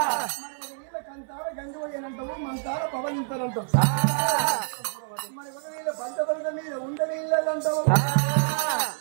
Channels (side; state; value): left; silent; 60 dB below the other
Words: కంతార గంగువయ్యనంటారు మంతార పవనింతారంటారు మన వీళ్ళ పంట పంట మీద ఉండని ఇళ్ళంటారు